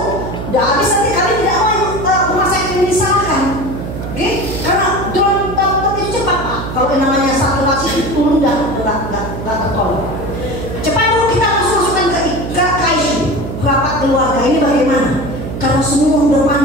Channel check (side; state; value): right; noise; hum, 7 dB below the sound